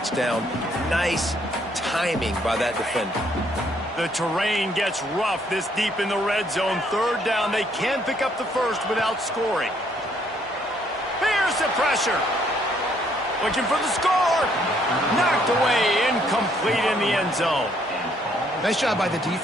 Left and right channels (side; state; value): both; normal; correlation 0.68